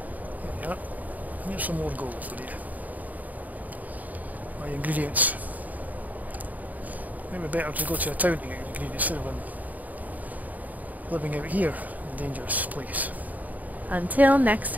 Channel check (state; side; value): late; left; 0.077 ms